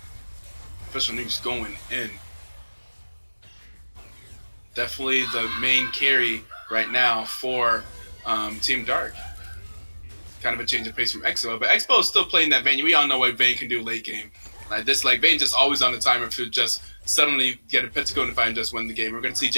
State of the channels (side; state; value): both; inverted; correlation -1.00